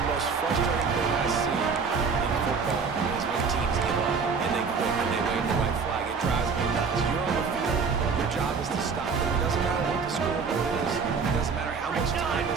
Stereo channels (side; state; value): left; quieter; 5.3 dB